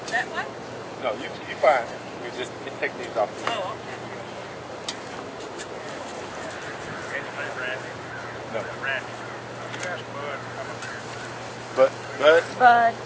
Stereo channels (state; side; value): identical; both; correlation 1.00